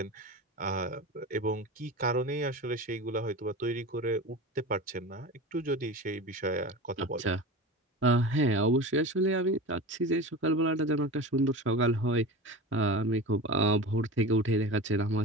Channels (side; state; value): both; normal; correlation 0.30